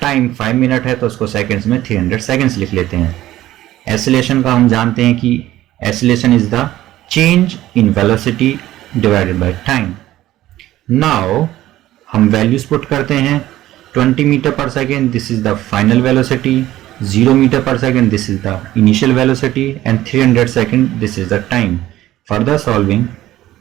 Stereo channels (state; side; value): quieter; left; 14.7 dB